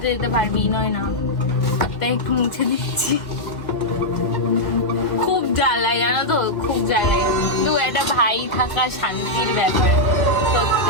যেতে পারবি, নয় না? তাই একটু মুছে দিচ্ছি। খুব জ্বালায় জানো তো, খুব জ্বালায়। কিন্তু একটা ভাই থাকা শান্তির ব্যাপার,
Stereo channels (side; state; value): right; late; 1.3 ms